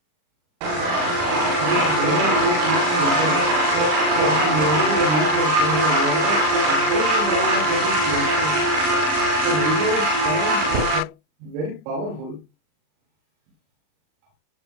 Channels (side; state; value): left; late; 39 ms